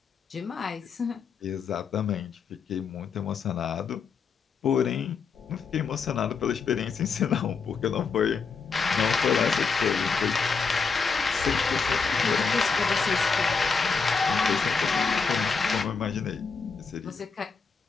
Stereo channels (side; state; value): right; quieter; 5.3 dB